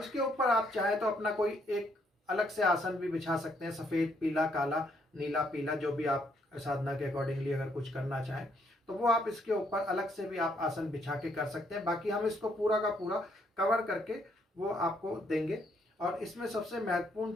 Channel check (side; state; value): both; normal; correlation 0.71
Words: इसके ऊपर आप चाहे तो अपना कोई एक अलग से आसन भी बिछा सकते हैं, सफ़ेद, पीला, काला, नीला, पीला, जो भी आप साधना के अकॉर्डिंगली अगर कुछ करना चाहें तो वो आप इसके ऊपर अलग से भी आप आसन बिछा के कर सकते हैं। बाकी हम इसको पूरा का पूरा कवर करके वो आपको देंगे। और इसमें सबसे महत्वपूर्ण